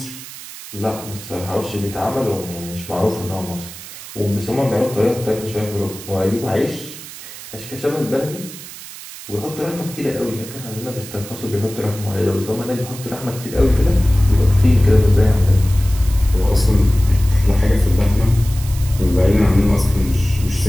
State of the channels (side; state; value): right; noise; hiss, 14 dB below the sound